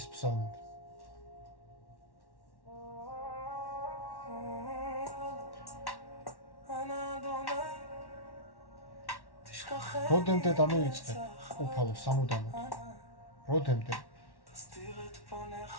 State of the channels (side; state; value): right; late; 1.1 ms